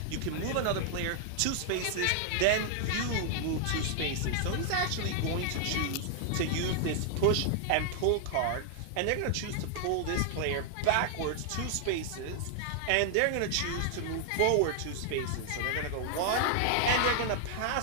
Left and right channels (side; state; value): both; different; correlation 0.00